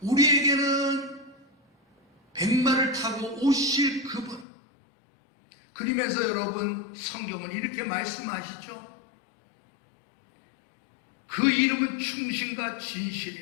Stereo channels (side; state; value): right; drops out; at 4.5 s